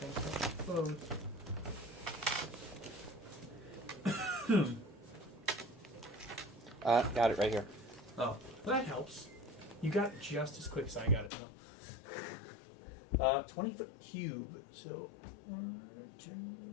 I can touch both. Got it right here. Oh, well, that helps. You got it just as quick as I got it, though. 20-foot cube, so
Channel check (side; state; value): right; drops out; at 11.3 s